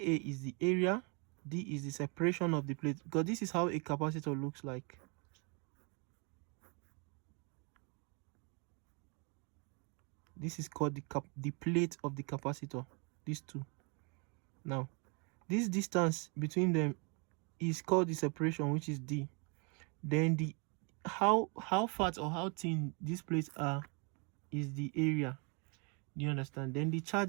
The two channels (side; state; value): left; quieter; 33.2 dB